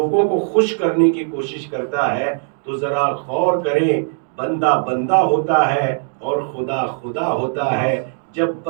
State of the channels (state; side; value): silent; left; 66 dB below the other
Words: کو خوش کرنے کی کوشش کرتا ہے، تو ذرا غور کریں، بندہ بندہ ہوتا ہے اور خدا خدا ہوتا ہے۔ جب